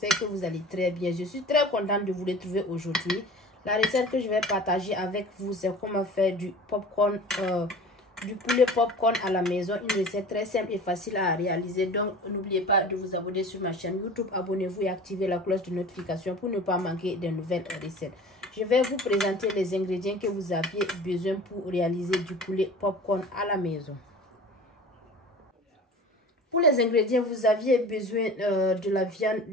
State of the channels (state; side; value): normal; both; correlation 0.40